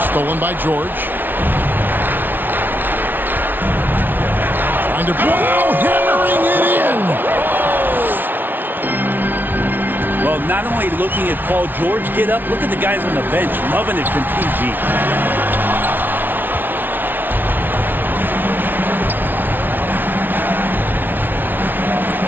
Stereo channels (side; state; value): left; late; 0.092 ms